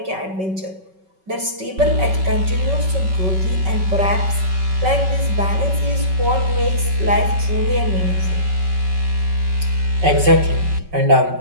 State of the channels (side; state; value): left; late; 5.3 ms